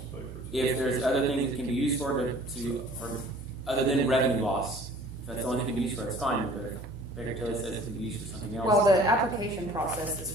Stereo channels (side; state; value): both; normal; correlation 0.50